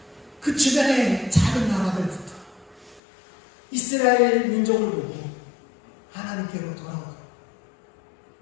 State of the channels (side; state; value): right; drops out; at 3.0 s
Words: 그 주변의 작은 나라들부터 이스라엘 민족을 보고 하나님께로 돌아오고